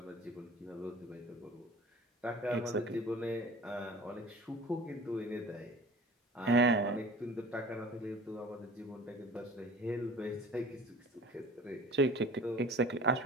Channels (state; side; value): normal; both; correlation 0.42